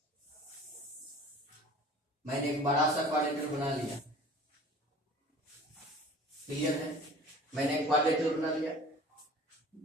मैंने एक बड़ा सा क्वाड्रिलेटरल बना लिया. क्लियर है? मैंने एक क्वाड्रिलेटरल बना लिया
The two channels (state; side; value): normal; both; correlation 0.45